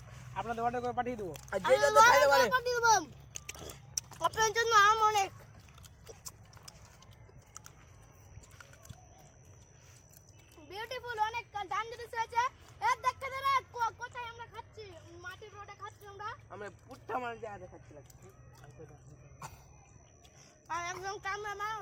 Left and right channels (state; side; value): identical; both; correlation 1.00